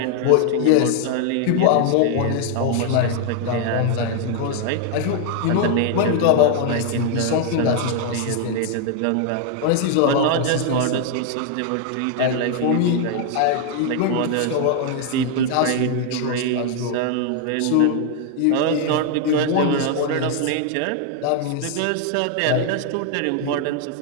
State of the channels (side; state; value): both; different; correlation 0.00